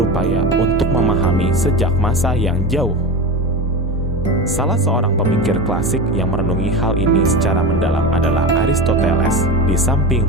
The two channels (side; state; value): both; normal; correlation 0.24